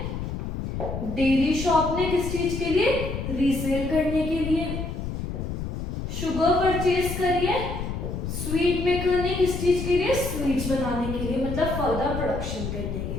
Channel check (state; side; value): noise; left; rumble, 5 dB below the sound